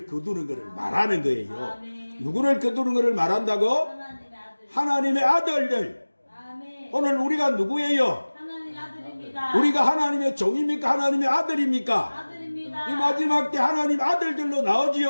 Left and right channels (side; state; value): both; inverted; correlation -1.00